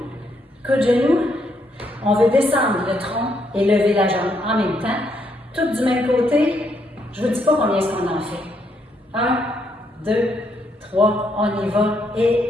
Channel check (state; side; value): normal; both; correlation 0.75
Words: coup de genou. On veut descendre le tronc et lever la jambe en même temps. Tout du même côté. Je ne vous dis pas combien est-ce qu'on en fait. 1, 2, 3, on y va.